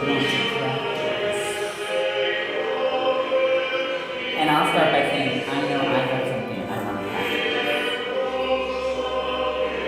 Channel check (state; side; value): identical; both; correlation 1.00